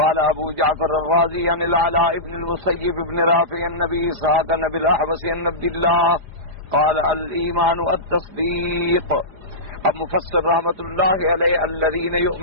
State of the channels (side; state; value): left; late; 4.9 ms